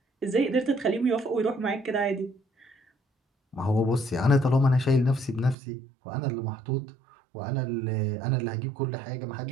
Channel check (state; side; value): drops out; left; at 5.6 s